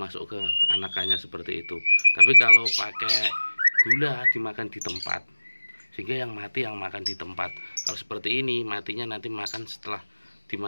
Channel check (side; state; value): both; inverted; correlation -1.00